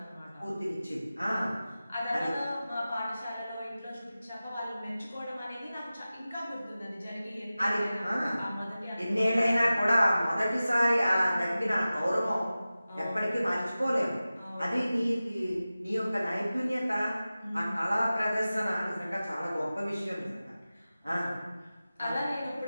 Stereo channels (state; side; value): inverted; both; correlation -0.96